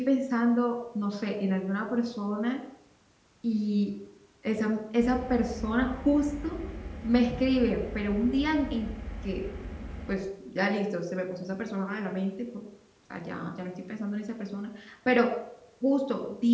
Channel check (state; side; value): identical; both; correlation 1.00